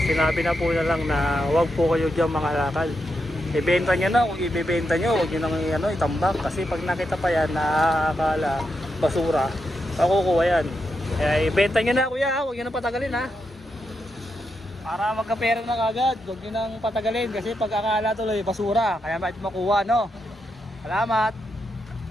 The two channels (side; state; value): both; normal; correlation 0.84